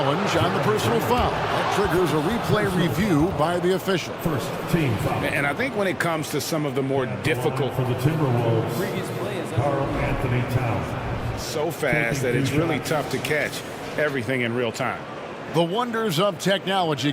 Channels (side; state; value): both; identical; correlation 1.00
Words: on the personal foul. That triggers a replay review by the official. First team foul. And I think when it comes to some of the more difficult for the Timberwolves, Karl Anthony Towns. So fast that it's really tough to catch everything in real time. The wonders of technology.